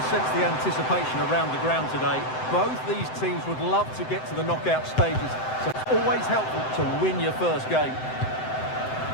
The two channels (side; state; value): right; late; 7.8 ms